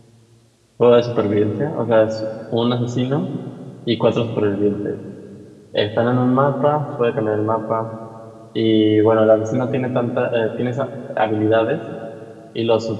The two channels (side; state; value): both; identical; correlation 1.00